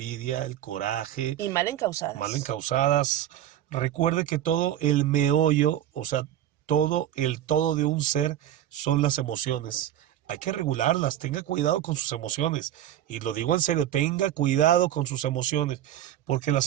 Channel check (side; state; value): left; quieter; 11.8 dB